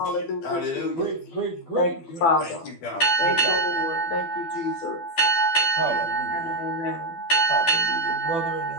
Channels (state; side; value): late; right; 12 ms